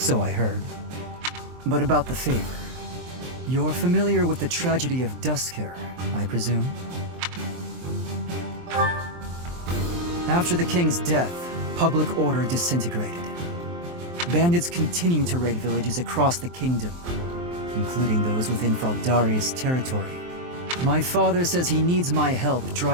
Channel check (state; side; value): late; left; 23 ms